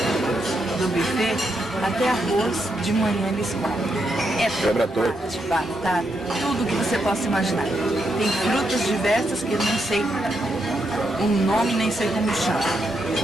do buffet, até arroz de manhã eles comem. É tomate, batata, tudo que você possa imaginar. Tem frutas diversas que eu não sei o nome, nem sei como chama.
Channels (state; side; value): normal; both; correlation 0.81